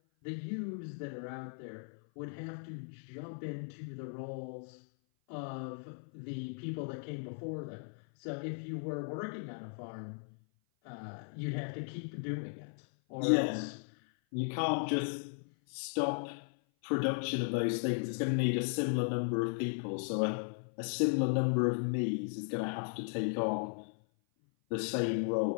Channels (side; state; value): right; silent; 53 dB below the other